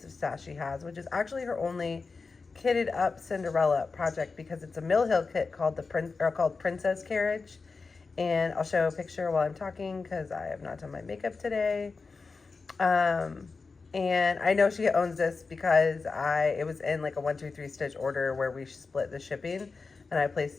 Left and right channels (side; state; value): right; quieter; 4.4 dB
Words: of stash she has, which is actually her only kitted up Cinderella project because it's a Mill Hill kit called Princess Carriage, and I'll show a picture while I'm talking because I have not done my makeup today. And I know she owns this because it was in like a 1-2-3 stitch order where we split the shipping, and I placed